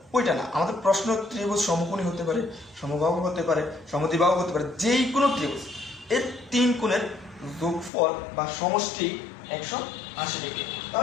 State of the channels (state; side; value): drops out; right; at 7.9 s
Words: ওইটা না, আমাদের প্রশ্ন ত্রিভুজ সমকোণী হতে পারে, সমবাহু হতে পারে, সমদ্বিবাহু হতে পারে, যেই কোনো ত্রিভুজ এর তিন কোণের যোগফল বা সমষ্টি 180 ডিগ্রি।